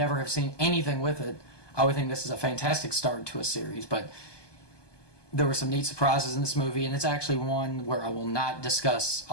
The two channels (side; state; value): right; late; 1.2 ms